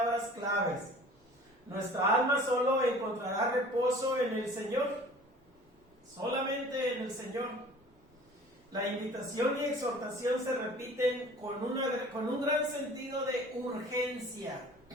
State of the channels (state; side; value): normal; both; correlation 0.46